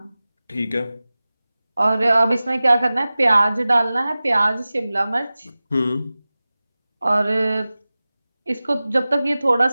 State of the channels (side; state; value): both; inverted; correlation -0.97